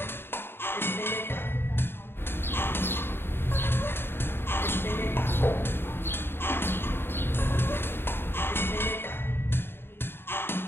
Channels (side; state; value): right; late; 0.11 ms